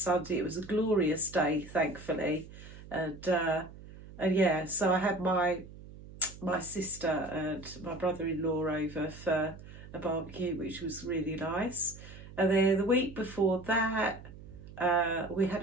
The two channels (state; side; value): noise; right; hum, 16 dB below the sound